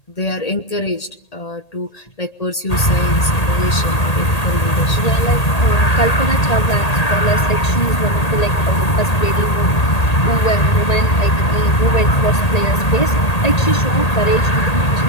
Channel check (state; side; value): late; right; 1.8 ms